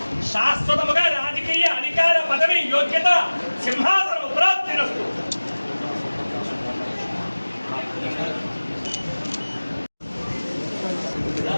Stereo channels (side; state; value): both; inverted; correlation -1.00